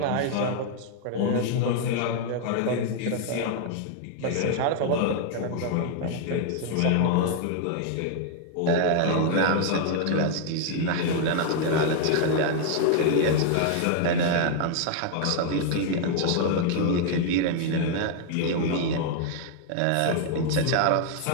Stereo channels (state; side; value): different; both; correlation 0.00